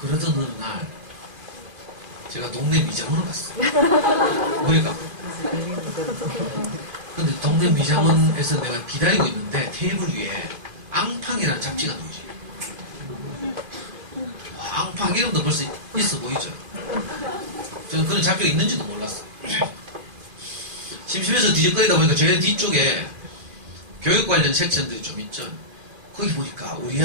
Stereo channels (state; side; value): late; left; 2.5 ms